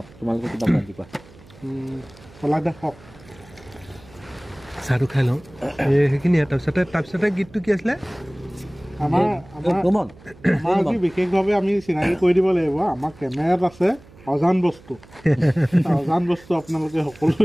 তোমালোকে কিবা বান্ধি কোৱা চাহটো খাই লওঁ সেইখিনিয়ে তাৰপিছতে গীতটো কি আছিলে আমাৰ বিশেষভাৱে আমি চিনাকি কৰি দিব লাগিব আমাৰ কেমেৰাত আছে অজান বস্তু আপোনালোকে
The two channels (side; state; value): right; noise; hum, 23 dB below the sound